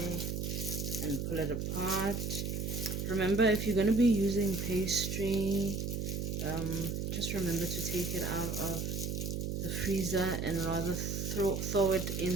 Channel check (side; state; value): right; noise; hum, 2 dB below the sound